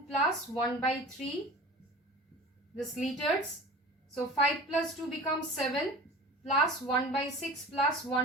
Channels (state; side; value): normal; both; correlation 0.38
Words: plus 1 by 3, this liters. So 5 plus 2 becomes 7 plus 1 by 6 plus